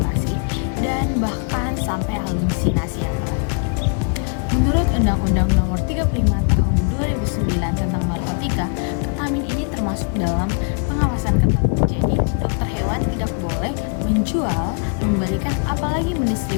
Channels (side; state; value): right; quieter; 38.2 dB